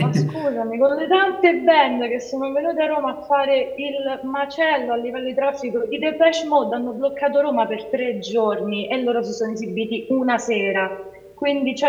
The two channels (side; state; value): both; identical; correlation 1.00